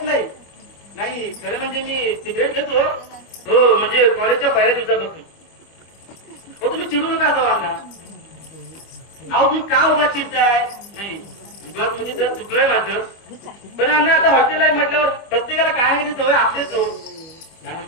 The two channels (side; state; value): right; late; 25 ms